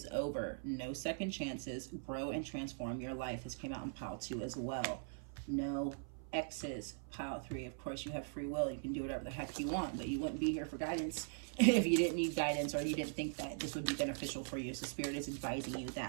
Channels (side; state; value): left; silent; 50 dB below the other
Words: over. No second chances. Grow and transform your life. This came out in pile 2 as well. No exes. Pile 3. Of course, you have free will. You can do whatever the heck you want, but you wouldn't be here for guidance if you didn't need guidance or you didn't think that this would be beneficial for you. So Spirit is advising you